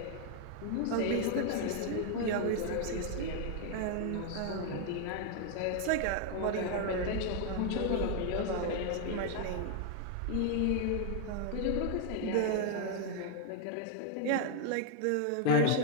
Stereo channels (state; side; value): different; both; correlation 0.00